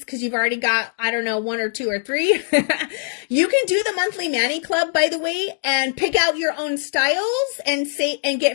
you've already got, I don't know, 1 or 2 or 3. You can do the monthly Mani Club, by the way, and pick out your own styles and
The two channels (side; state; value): right; silent; digital silence